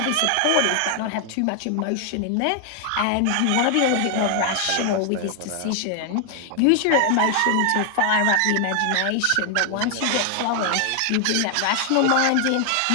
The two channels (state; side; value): different; both; correlation 0.00